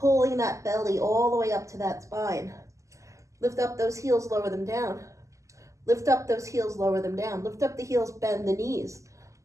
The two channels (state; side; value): late; left; 0.16 ms